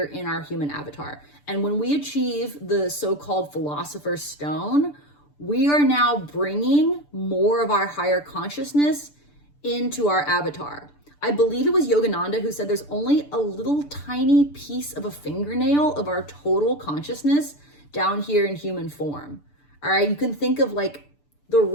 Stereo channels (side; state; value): right; late; 6.8 ms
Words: in our human avatar. And when we achieve the so-called Philosopher's Stone, we are now bringing more of our higher consciousness into our avatar. I believe it was Yogananda who said there's only a little tiny piece of a fingernail of our total consciousness down here in human form. All right, you can think of like the